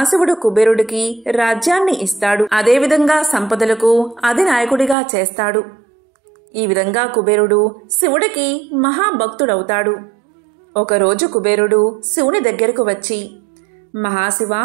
కుబేరుడికి రాజ్యాన్ని ఇస్తాడు. అదేవిధంగా సంపదలకు అధినాయకుడిగా చేస్తాడు. ఈ విధంగా కుబేరుడు శివుడికి మహాభక్తుడవుతాడు. ఒకరోజు కుబేరుడు శివుని దగ్గరకు వచ్చి, మహాశివ,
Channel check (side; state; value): left; drops out; at 5.0 s